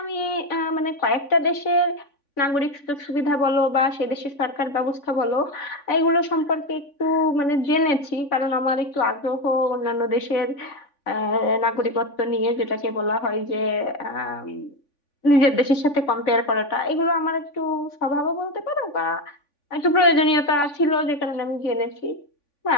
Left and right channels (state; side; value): late; right; 3.5 ms